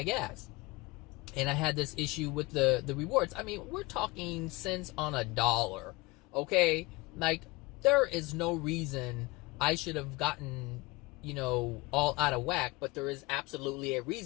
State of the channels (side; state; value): right; quieter; 22.8 dB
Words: gas. And I had this issue with the rewards. I mean, we're talking cents on a dollar, okay? Like, there is no reason I should have gotten, all out of whack, but there is absolutely a